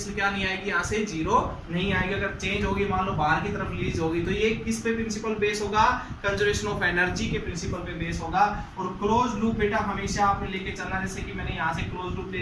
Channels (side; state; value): both; identical; correlation 1.00